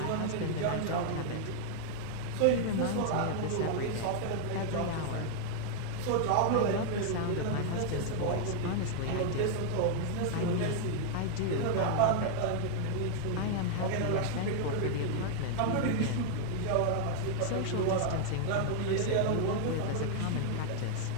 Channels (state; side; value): different; both; correlation 0.00